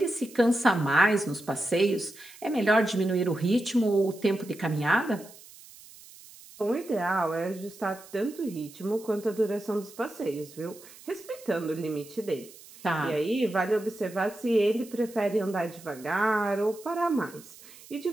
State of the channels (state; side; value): noise; right; hiss, 20 dB below the sound